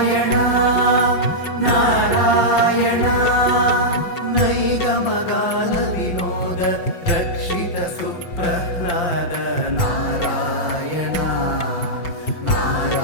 नारायण नैगमगान विनोद रक्षित सुप्रह्लाद नारायण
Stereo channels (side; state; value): right; late; 5.8 ms